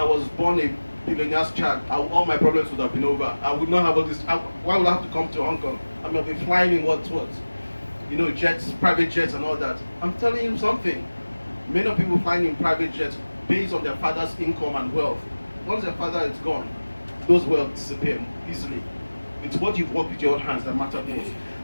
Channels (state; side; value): inverted; both; correlation -1.00